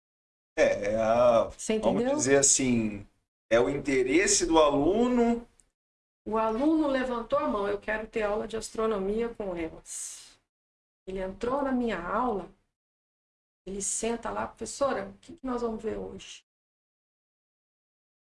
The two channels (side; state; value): both; identical; correlation 1.00